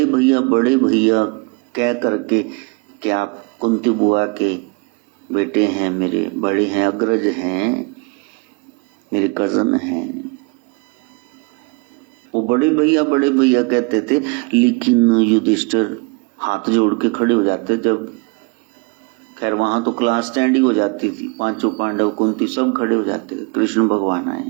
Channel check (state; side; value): quieter; left; 29.5 dB